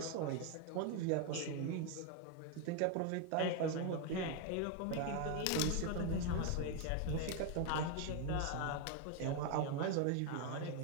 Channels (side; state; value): both; different; correlation 0.01